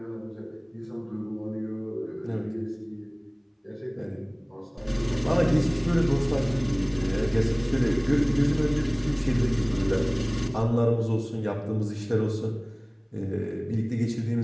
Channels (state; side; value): identical; both; correlation 1.00